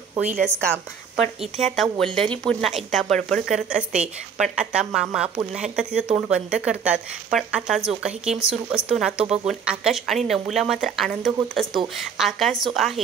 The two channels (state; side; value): quieter; left; 6.8 dB